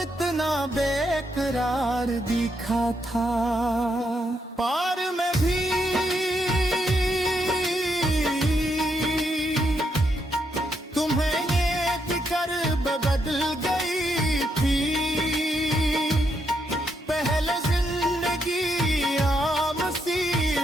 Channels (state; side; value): normal; both; correlation 0.79